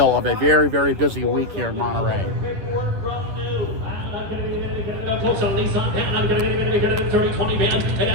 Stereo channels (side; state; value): left; late; 11 ms